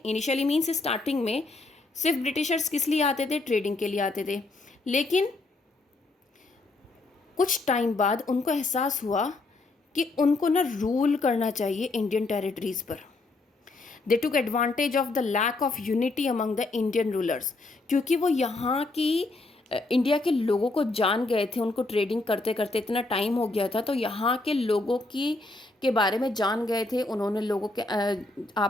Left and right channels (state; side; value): quieter; right; 3.2 dB